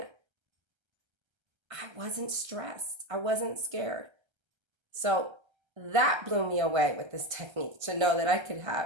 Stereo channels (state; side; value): late; left; 1.3 ms